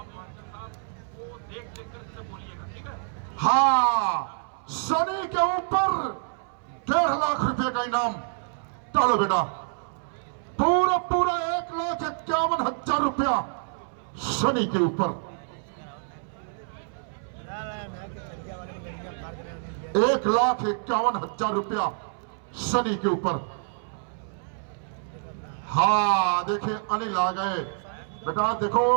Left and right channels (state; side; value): silent; left; 60 dB below the other